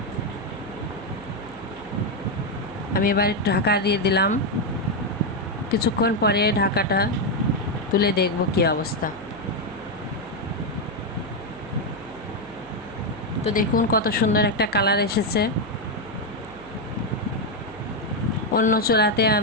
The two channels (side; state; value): right; noise; hum, 19 dB below the sound